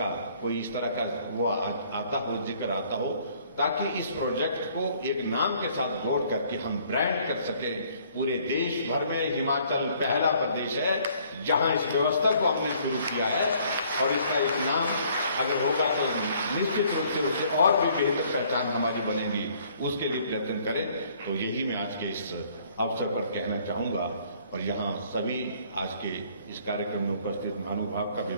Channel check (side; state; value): both; inverted; correlation -0.61